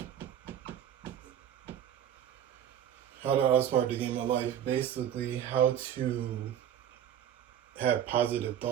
How to outsmart the game of life. Basically, how to have positive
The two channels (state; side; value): quieter; left; 10.1 dB